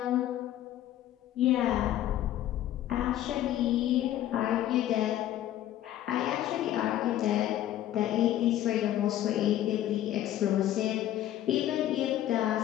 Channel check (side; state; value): right; quieter; 12.6 dB